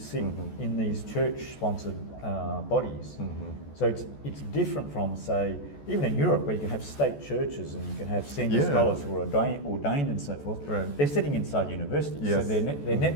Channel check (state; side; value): late; right; 14 ms